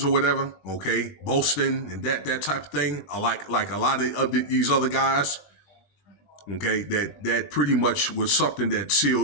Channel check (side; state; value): right; late; 20 ms